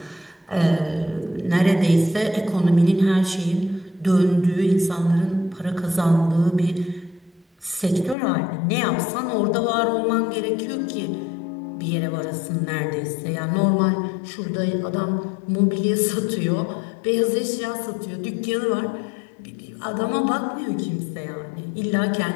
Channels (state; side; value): drops out; right; at 8.2 s